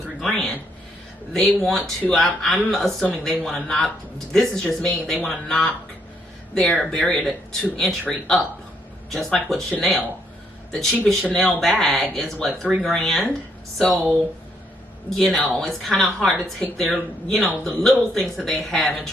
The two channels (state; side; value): normal; both; correlation 0.73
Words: $3 grand? They want to, I'm assuming they want to knock, this is just me, they want to knock their barrier to entry up, just like with Chanel. The cheapest Chanel bag is what, $3 grand? So, you know, it's kind of hard to take their, you know, the little things that they have and